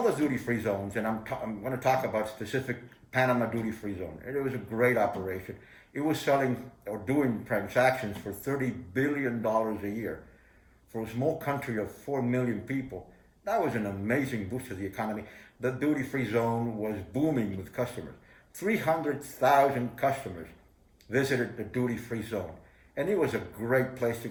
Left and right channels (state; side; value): identical; both; correlation 1.00